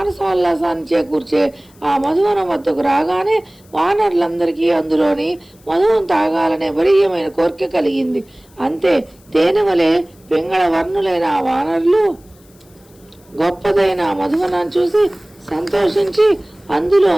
చేకూర్చే ఆ మధువనం వద్దకు రాగానే వానరులందరికీ అందులోని మధువం తాగాలనే బలీయమైన కోరిక కలిగింది. అంతే, తేనె వలె పింగళ వర్ణులైన ఆ వానరులు గొప్పదైన మధువనాన్ని చూసి సంతోషించి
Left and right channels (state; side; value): noise; left; hiss, 30 dB below the sound